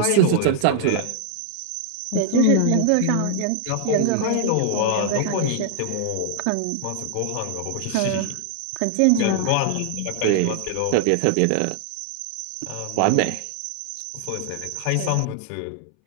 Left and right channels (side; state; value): both; different; correlation 0.00